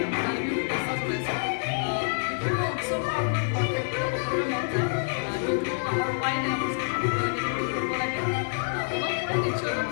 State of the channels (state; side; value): silent; right; digital silence